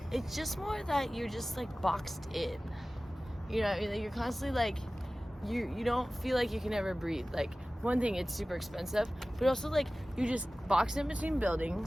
It's just more that you're just like boxed in. You know, you're constantly like, you don't feel like you can ever breathe. Like one thing, it's super expensive, but also like you just boxed in between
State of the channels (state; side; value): normal; both; correlation 0.97